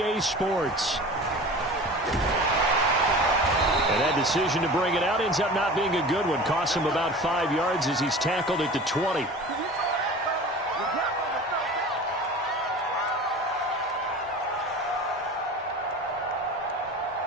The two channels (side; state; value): both; normal; correlation 0.38